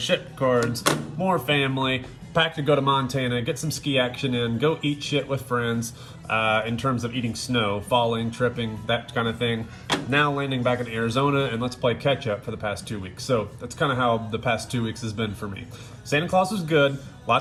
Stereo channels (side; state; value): both; identical; correlation 1.00